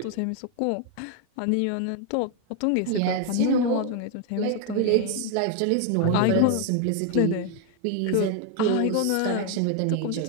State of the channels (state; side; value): different; both; correlation 0.00